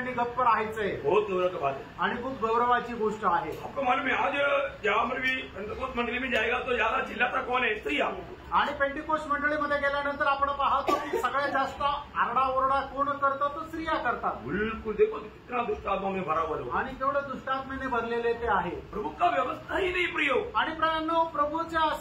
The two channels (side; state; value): both; identical; correlation 1.00